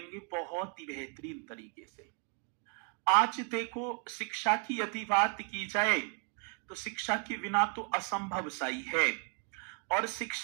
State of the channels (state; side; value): quieter; left; 37.5 dB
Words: बहुत ही बेहतरीन तरीके से। आज देखो शिक्षा की यदि बात की जाए तो शिक्षा के बिना तो असंभव सा ही है और